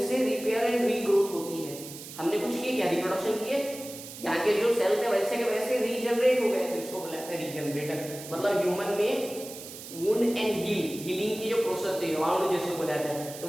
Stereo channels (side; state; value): right; noise; hiss, 13 dB below the sound